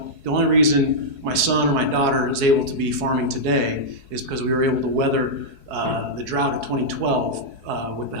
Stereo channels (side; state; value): left; late; 4.7 ms